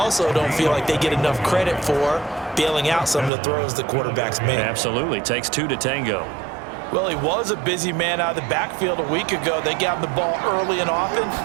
don't feel like they get enough credit for bailing out some of the throws the quarterbacks make. Absolutely. Takes two to tango. Well, he was a busy man out of the backfield a week ago. They got him the ball early and often.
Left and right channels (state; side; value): drops out; left; at 3.3 s